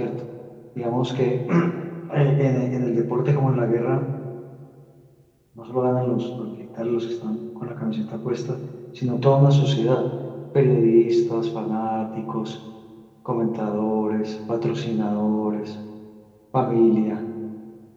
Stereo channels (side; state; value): both; identical; correlation 1.00